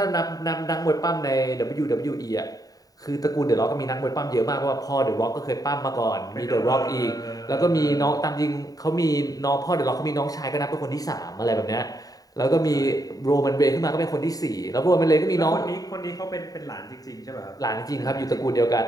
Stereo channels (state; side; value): late; right; 0.18 ms